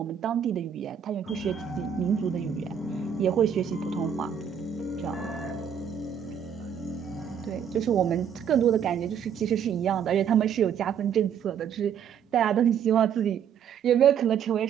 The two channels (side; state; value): left; quieter; 8.2 dB